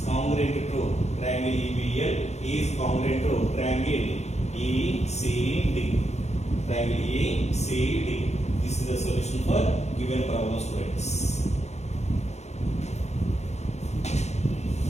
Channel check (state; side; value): late; right; 0.32 ms